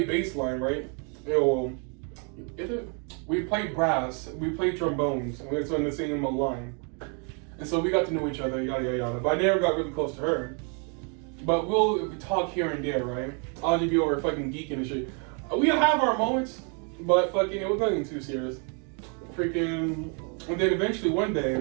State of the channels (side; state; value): left; quieter; 38.2 dB